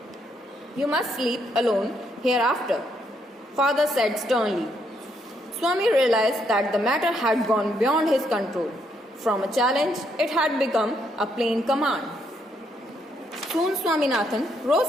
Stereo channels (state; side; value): normal; both; correlation 0.74